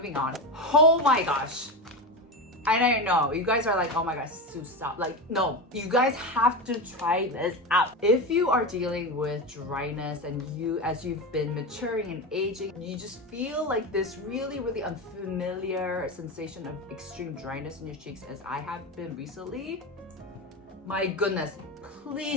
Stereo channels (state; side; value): normal; both; correlation 0.19